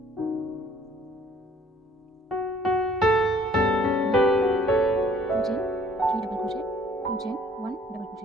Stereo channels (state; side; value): normal; both; correlation 0.57